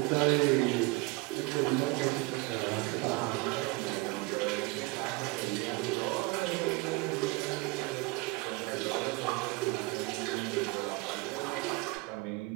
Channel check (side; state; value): left; quieter; 23.0 dB